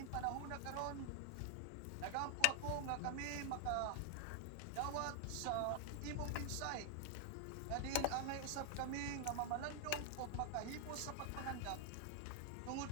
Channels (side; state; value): both; different; correlation 0.00